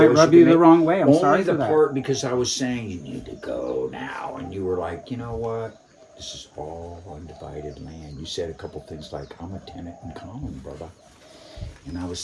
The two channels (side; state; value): both; identical; correlation 1.00